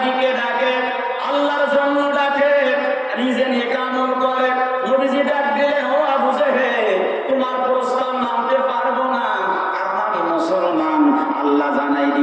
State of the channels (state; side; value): identical; both; correlation 1.00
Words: দিকে ডাকে, আল্লাহর জন্য ডাকে, নিজে নিয়ে আমল করে। নবীজি ডাক দিলেন, ও আবু জেহেল, তোমার প্রস্তাব মানতে পারবো না, কারণ আমি মুসলমান। আল্লাহ জানাই